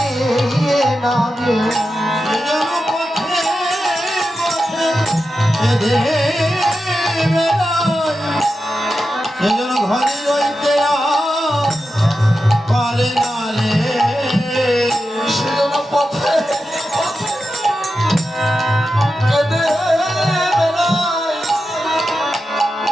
না রে, যেন পথে পথে কেঁদে বেড়ায়, সে যেন ঘরে রইতে পারে না রে, সে যেন পথে পথে কেঁদে বেড়ায়,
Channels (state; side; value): normal; both; correlation 0.90